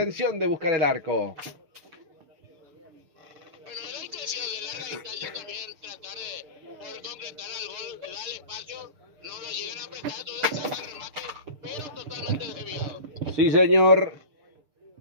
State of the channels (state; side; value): late; left; 6.7 ms